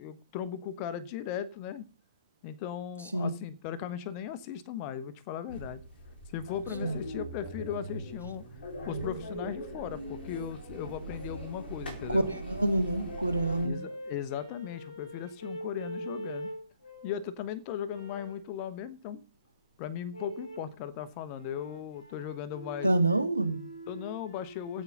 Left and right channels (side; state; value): both; inverted; correlation -0.63